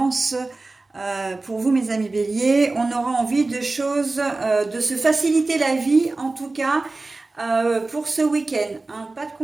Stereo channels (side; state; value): left; quieter; 3.3 dB